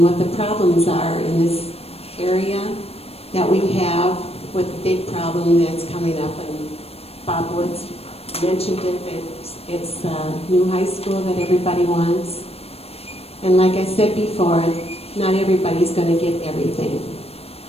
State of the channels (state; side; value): late; right; 0.29 ms